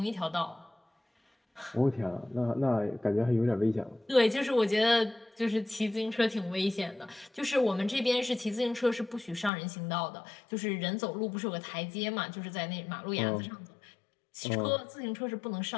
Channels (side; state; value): right; drops out; at 9.5 s